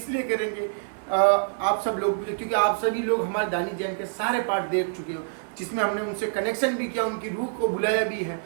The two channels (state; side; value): silent; left; digital silence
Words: लिए करेंगे, आप सब लोग, क्योंकि आप सभी लोग हमारे दानिश जैन के सारे पार्ट देख चुके हो, जिसमें हमने उनसे कनेक्शन भी किया, उनकी रूह को बुलाया भी है